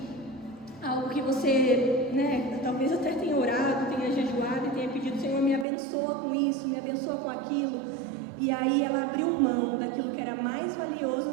Algo que você, talvez até tenha orado, tenha jejuado e tenha pedido: Senhor, me abençoa com isso, me abençoa com aquilo. E aí ela abriu mão daquilo que era mais valioso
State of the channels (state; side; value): drops out; left; at 5.7 s